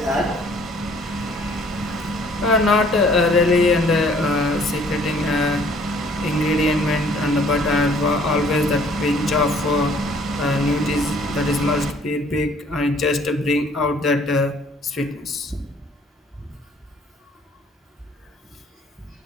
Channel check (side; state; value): both; normal; correlation 0.58